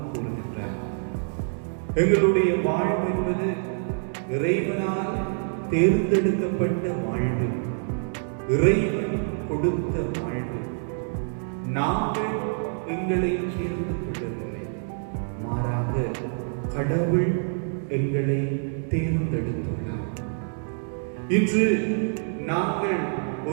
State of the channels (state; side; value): silent; left; digital silence